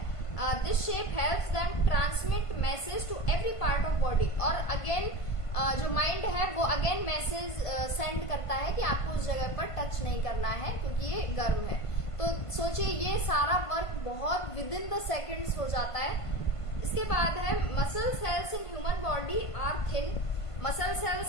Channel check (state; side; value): late; right; 1.5 ms